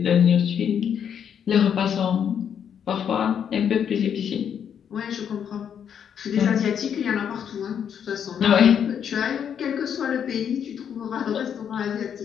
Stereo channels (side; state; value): right; quieter; 8.3 dB